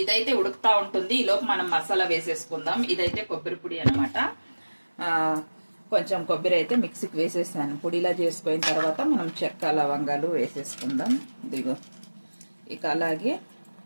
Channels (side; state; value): both; inverted; correlation -1.00